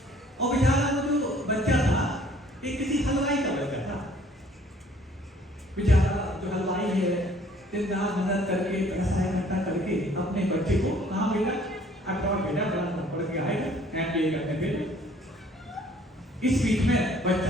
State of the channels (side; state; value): both; normal; correlation 0.57